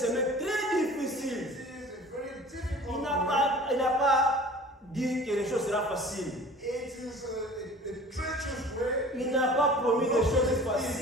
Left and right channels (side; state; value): both; normal; correlation 0.44